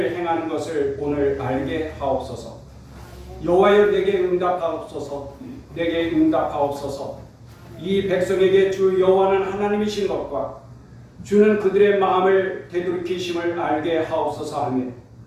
행하는 것을 오늘 알게 하옵소서. 여호와여, 내게 응답하옵소서. 내게 응답하옵소서. 이 백성에게 주 여호와는 하나님이신 것과 주는 그들의 마음을 되돌이키심을 알게 하옵소서 하며,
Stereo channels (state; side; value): identical; both; correlation 1.00